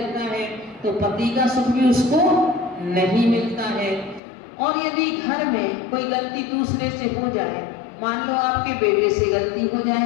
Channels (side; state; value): right; drops out; at 4.2 s